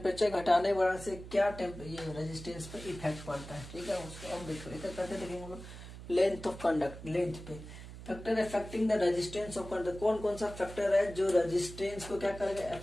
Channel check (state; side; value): noise; right; hum, 13 dB below the sound